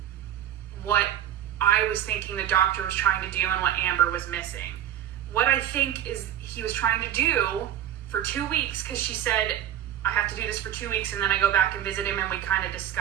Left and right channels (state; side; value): quieter; left; 10.9 dB